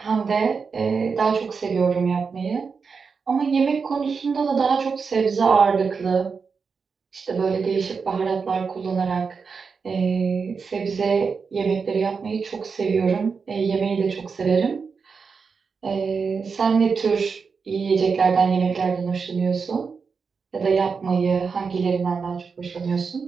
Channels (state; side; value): quieter; left; 5.3 dB